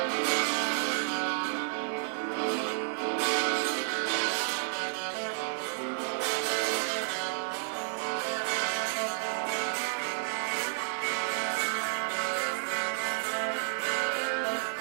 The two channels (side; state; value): left; silent; 57 dB below the other